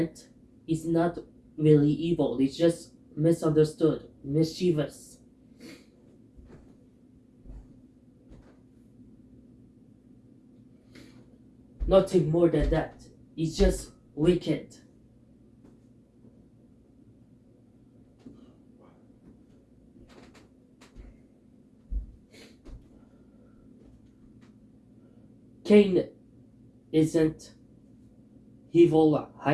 he's not really evil. He's just misunderstood, mischievous. Nothing more than that. He's just wicked. Cain isn't evil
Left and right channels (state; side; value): identical; both; correlation 1.00